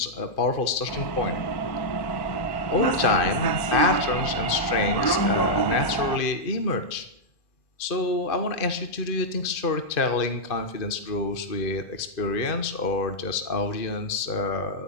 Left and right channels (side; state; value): right; late; 2.4 ms